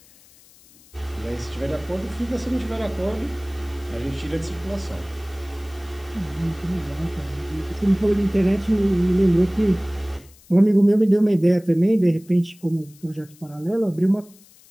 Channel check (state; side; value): noise; left; hiss, 26 dB below the sound